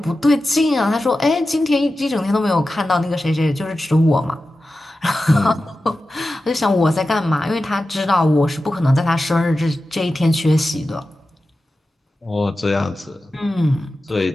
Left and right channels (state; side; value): normal; both; correlation 0.93